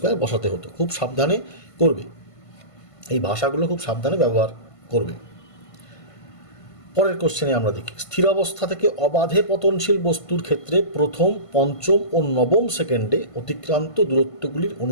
বসাতে হতো। খুব সাবধানে করবে, এই ভাষাগুলো খুব সাবধানে ব্যবহার করবে। পরের কোশ্চেনে আমরা দেখি, স্থির অবস্থা থেকে অবাধে পতনশীল বস্তুর ক্ষেত্রে প্রথম, পঞ্চম ও নবম সেকেন্ডে অতিক্রান্ত দূরত্বগুলির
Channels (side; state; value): right; late; 1.5 ms